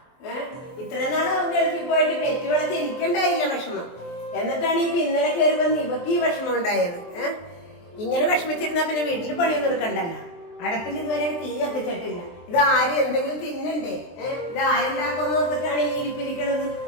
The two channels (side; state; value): right; late; 23 ms